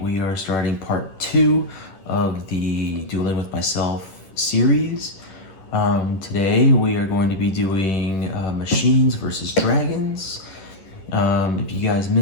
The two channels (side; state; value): right; late; 10 ms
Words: are starting part 2 of the Dueling with Myself series. Today we are going to be doing machines versus dragons. If you guys